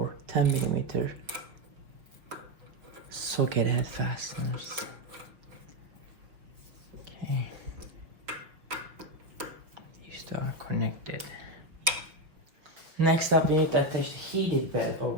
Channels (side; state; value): left; late; 5.7 ms